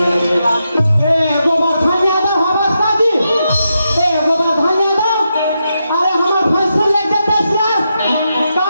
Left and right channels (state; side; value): inverted; both; correlation -0.85